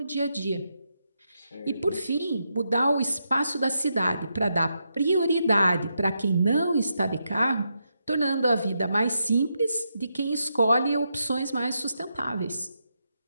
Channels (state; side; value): inverted; both; correlation -0.83